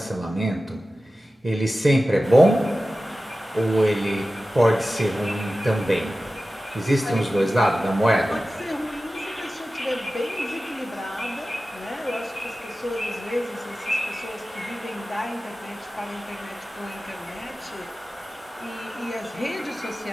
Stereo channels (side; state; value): both; normal; correlation 0.95